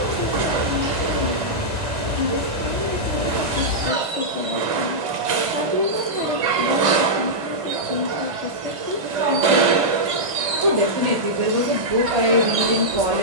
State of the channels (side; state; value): left; late; 1.5 ms